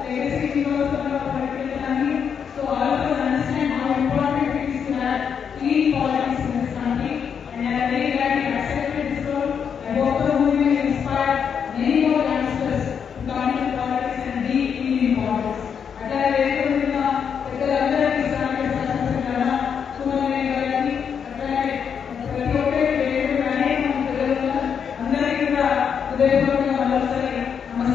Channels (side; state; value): right; quieter; 7.2 dB